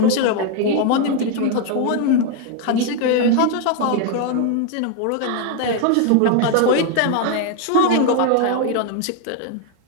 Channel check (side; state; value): both; different; correlation 0.01